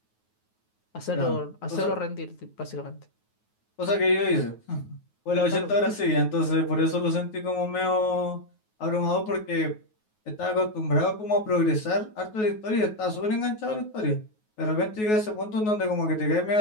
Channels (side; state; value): right; late; 9.4 ms